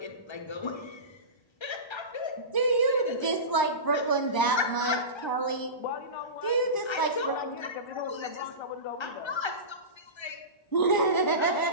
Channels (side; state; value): right; late; 1.0 ms